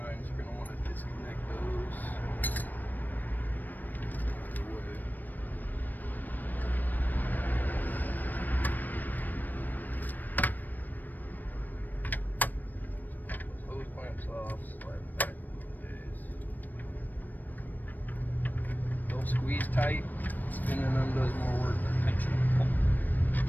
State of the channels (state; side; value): late; right; 0.088 ms